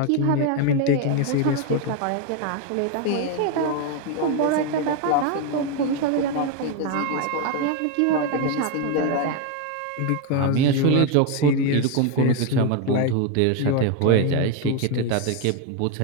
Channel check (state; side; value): different; both; correlation 0.01